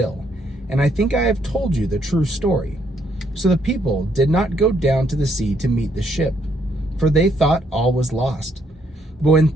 and I think I have told you the true story. So the people did not go down to the sea to meet the ship, for they thought all was lost. But when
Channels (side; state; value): both; normal; correlation 0.71